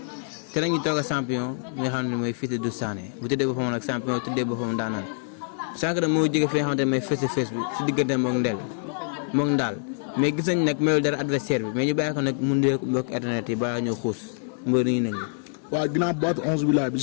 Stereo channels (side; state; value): right; silent; 61 dB below the other